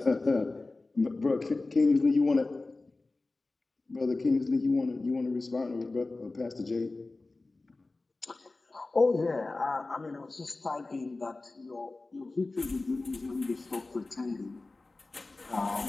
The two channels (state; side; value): quieter; right; 3.3 dB